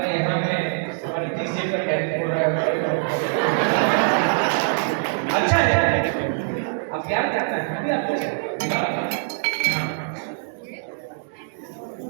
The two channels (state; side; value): silent; left; digital silence